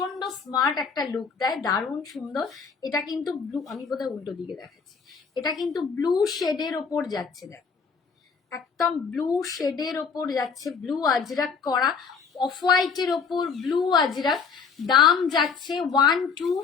স্মার্ট একটা লুক দেয়, দারুণ সুন্দর। এটা কিন্তু ব্লু, আমি বোধহয় উল্টো দিকে দেখাচ্ছি, এটা কিন্তু ব্লু শেডের ওপর যাচ্ছে, দেখো একদম ব্লু শেডের ওপর যাচ্ছে, ব্লু আজরাক করা, অফ হোয়াইটের ওপর ব্লু আজরাক। দাম যাচ্ছে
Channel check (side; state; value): right; quieter; 5.6 dB